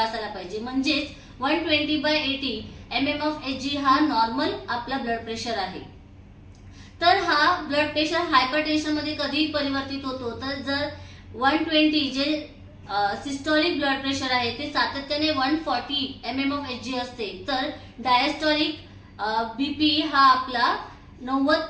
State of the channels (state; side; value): identical; both; correlation 1.00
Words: पाहिजे, म्हणजेच 120/80 mmHg हा नॉर्मल आपला ब्लड प्रेशर आहे। तर हा ब्लड प्रेशर हायपरटेन्शन मध्ये कधी परिवर्तित होतो, तर जर 120 जे सिस्टोलिक ब्लड प्रेशर आहे ते सातत्याने 140 mmHg असते, तर डायस्टोलिक बीपी हा आपला